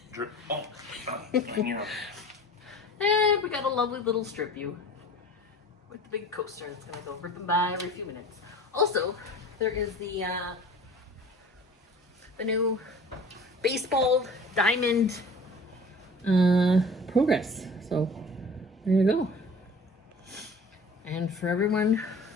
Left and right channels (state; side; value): normal; both; correlation 0.42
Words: And we got a lovely little strip view with the big coaster that's gonna go ripping by every few minutes. Also, there is the new baseball diamond progress. So there you go. And for everyone